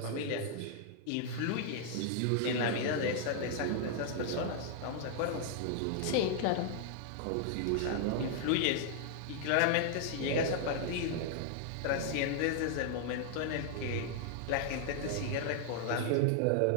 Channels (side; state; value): both; different; correlation -0.01